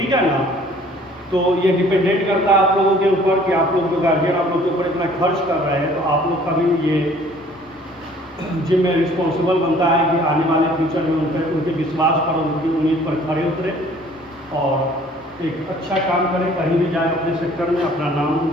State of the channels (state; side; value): normal; both; correlation 0.54